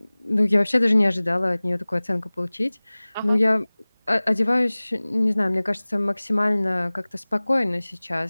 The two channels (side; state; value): both; inverted; correlation -1.00